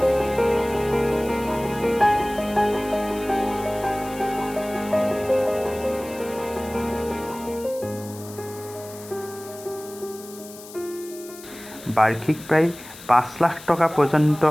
বাৰ্ষিক প্ৰায় ৫ লাখ টকা পৰ্যন্ত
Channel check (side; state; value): left; noise; hiss, 17 dB below the sound